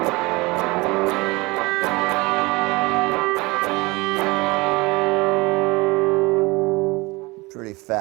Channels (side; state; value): left; quieter; 23.8 dB